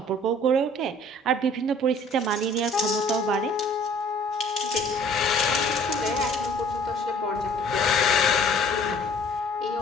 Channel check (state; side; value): normal; both; correlation 0.54